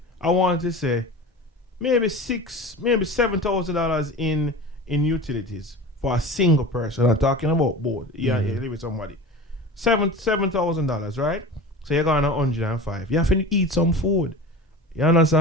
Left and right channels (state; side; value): normal; both; correlation 0.33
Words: I want to say, maybe $7,000 in utilities for a single person. I'm talking about both. Yeah, you live with somebody. $7,000, right? So you're going to 105. You have to eat some food. You